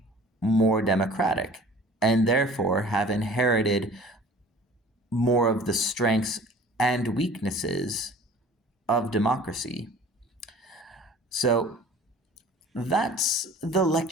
more democratic, and therefore have inherited more of the strengths and weaknesses of democracy. So that's the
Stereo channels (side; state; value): both; normal; correlation 0.47